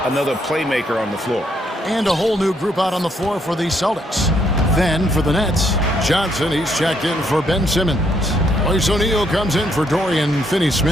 another playmaker on the floor. And a whole new group out on the floor for the Celtics. Then for the Nets, Johnson, he's checked in for Ben Simmons. Royce O'Neal comes in for Dorian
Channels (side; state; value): both; normal; correlation 0.73